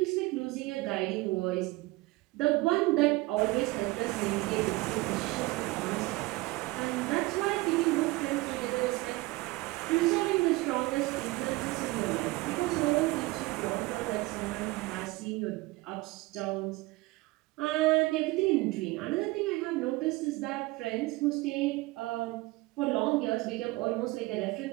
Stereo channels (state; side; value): quieter; left; 21.4 dB